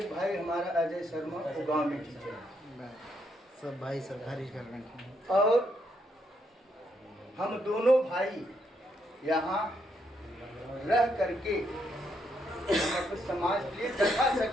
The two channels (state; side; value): normal; both; correlation 0.76